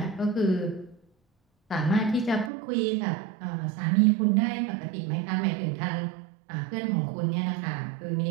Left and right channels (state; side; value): drops out; left; at 2.5 s